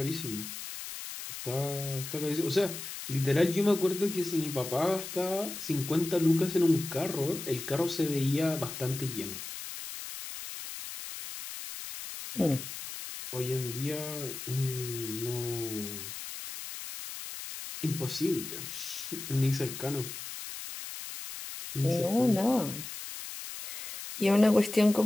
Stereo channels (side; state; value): left; noise; hiss, 9 dB below the sound